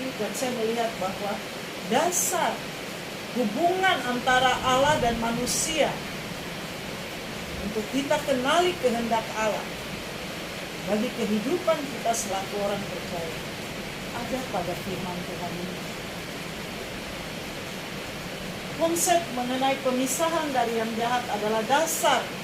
dan saya melihat bahwa dasar hubungan antara Allah dan manusia untuk kita kenali kehendak Allah bagi kehidupan kita selaku orang percaya ada pada firman Tuhan ini. Konsep mengenai pemisahan dari yang jahat adalah dasar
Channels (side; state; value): both; identical; correlation 1.00